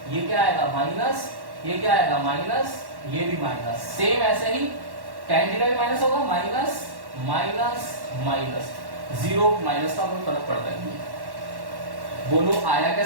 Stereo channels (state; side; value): late; left; 1.1 ms